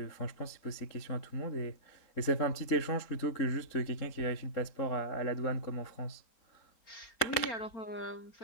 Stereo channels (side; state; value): right; late; 3.8 ms